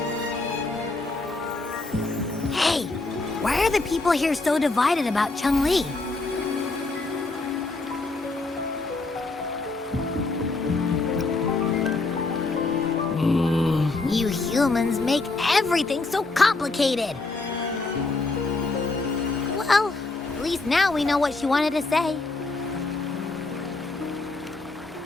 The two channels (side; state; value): right; quieter; 3.4 dB